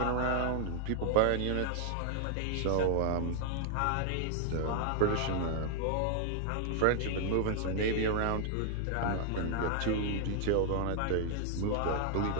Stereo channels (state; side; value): different; both; correlation 0.00